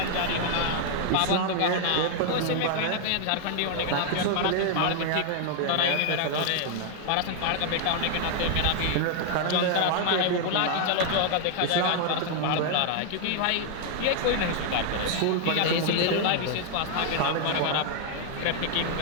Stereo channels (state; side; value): different; both; correlation 0.00